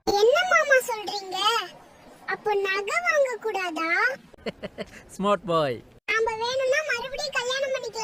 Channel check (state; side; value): identical; both; correlation 1.00